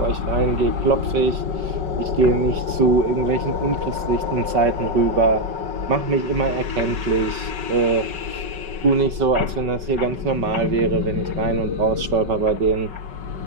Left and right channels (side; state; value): left; late; 5.3 ms